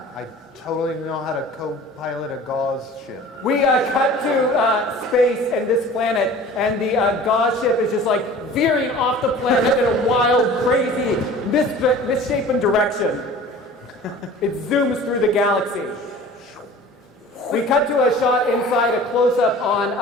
I totally know how to co-pilot a gauze ship. We cut to space and this planet, and the gauze ship is just like veering off the planet in a wild, crazy, misshapen direction. It zooms through the galaxy. We cut to a shot inside, a close-up on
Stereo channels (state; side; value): normal; both; correlation 0.43